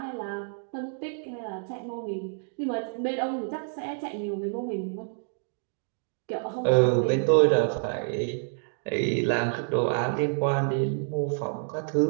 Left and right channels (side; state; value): left; silent; digital silence